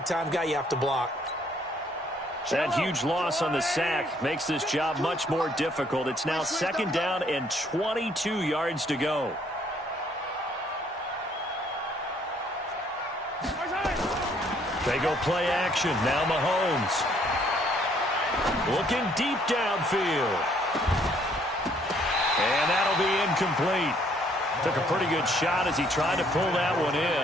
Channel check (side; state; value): both; normal; correlation 0.65